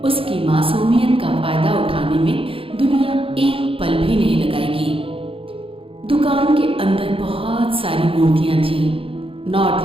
उसकी मासूमियत का फायदा उठाने में दुनिया एक पल भी नहीं लगाएगी। दुकान के अंदर बहुत सारी मूर्तियां थीं।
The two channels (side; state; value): left; late; 0.27 ms